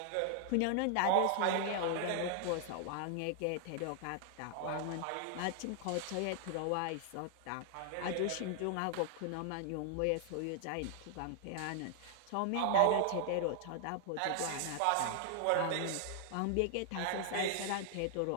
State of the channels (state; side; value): different; both; correlation 0.00